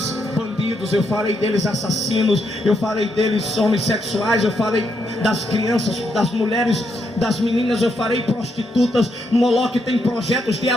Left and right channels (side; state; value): both; normal; correlation 0.78